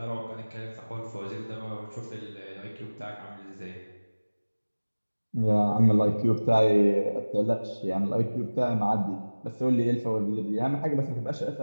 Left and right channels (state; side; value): inverted; both; correlation -1.00